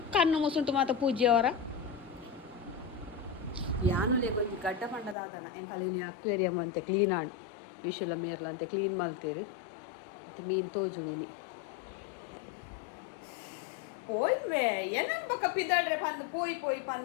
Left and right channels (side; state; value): right; drops out; at 5.2 s